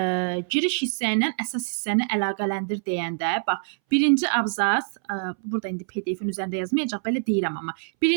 giriş hissə ilə əsas hissəni əlaqələndir deyəndə, bax, birinci abzas, burada indi PDF-in üzərində yazmayacaq, belə deyirəm amma.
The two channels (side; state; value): left; silent; 61 dB below the other